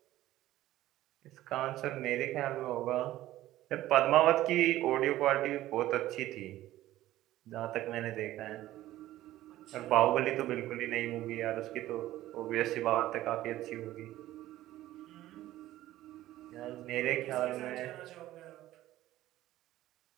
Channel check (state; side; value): quieter; left; 15.0 dB